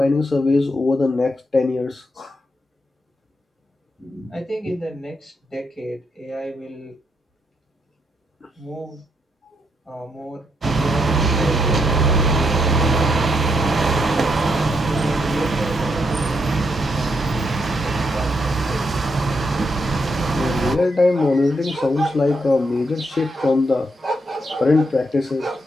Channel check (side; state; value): both; normal; correlation 0.78